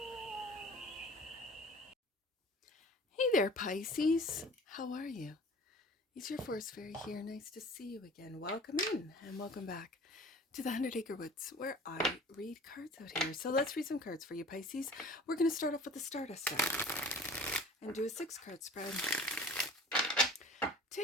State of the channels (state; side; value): normal; both; correlation 0.45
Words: there, Pisces. How are you? It's your force fairy here. Nice to see you again. Welcome in and welcome back to the 100 Acre Woods, where I read cards out here. So let's read some cards for you, Pisces. We're going to start off with the Stardust deck and do a 6-card spread.